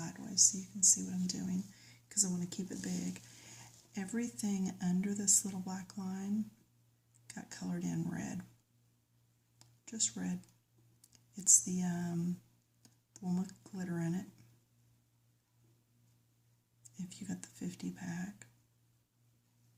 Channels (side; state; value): both; identical; correlation 1.00